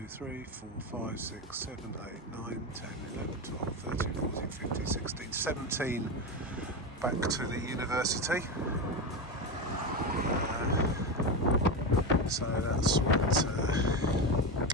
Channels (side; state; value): both; normal; correlation 0.16